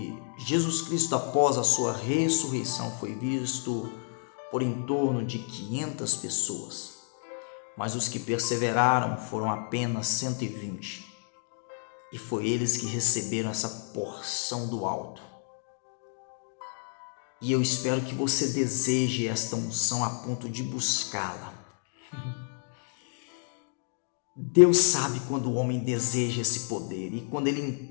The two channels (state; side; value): silent; right; 58 dB below the other